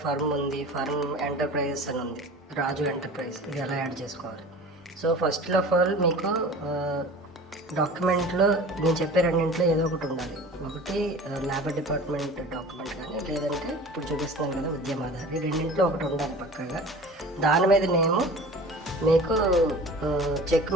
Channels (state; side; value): normal; both; correlation 0.40